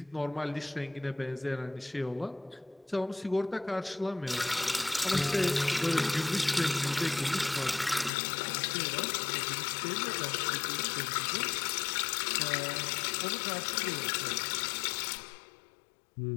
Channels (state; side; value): drops out; right; at 8.1 s